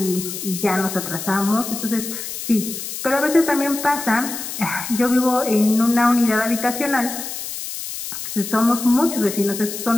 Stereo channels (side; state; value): left; noise; hiss, 7 dB below the sound